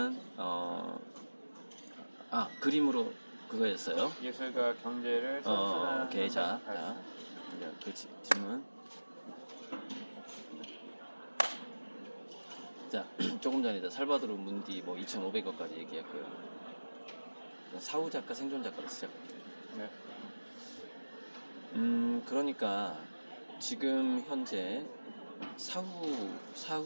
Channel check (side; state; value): both; inverted; correlation -1.00